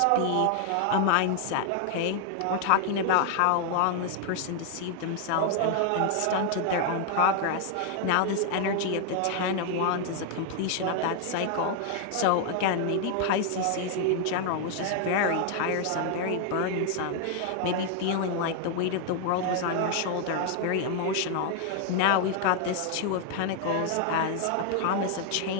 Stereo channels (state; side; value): different; both; correlation 0.00